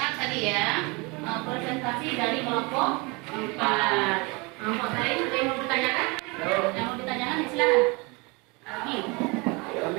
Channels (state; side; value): quieter; left; 27.7 dB